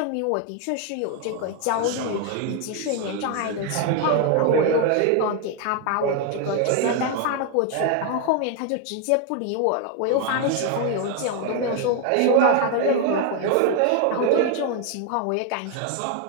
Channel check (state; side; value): different; both; correlation 0.01